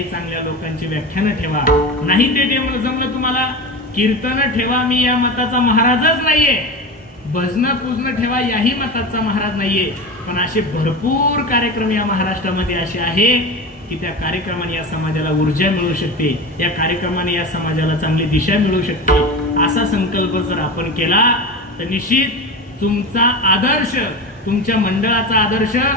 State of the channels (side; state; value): both; normal; correlation 0.26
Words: चांगल्या लोकांची व्याख्यानं ठेवा. नाही ते जमलं तुम्हाला, कीर्तन ठेवा, मी या मताचा महाराजच नाहीये, भजन पूजन ठेवा, याही मताचा महाराज नाहीये, पण असे भरपूर कार्यक्रम या महाराष्ट्रामध्ये असे आहे की त्या कार्यक्रमाने या समाजाला ऊर्जा मिळू शकते, या कार्यक्रमाने या समाजाला चांगली दिशा मिळू शकते. असा संकल्प जर आपण केला तर निश्चित तुमचा आदर्श, तुमच्या मंडळाचा आदर्श